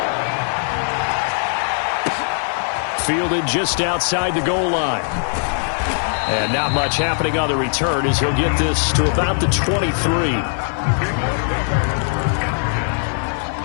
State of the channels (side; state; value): right; silent; digital silence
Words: Fielded just outside the goal line. And not much happening on the return as he'll get this to about the 23.